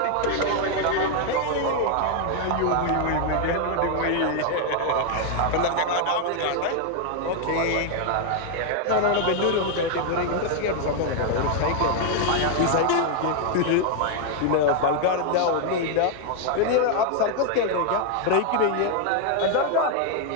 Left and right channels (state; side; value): different; both; correlation 0.00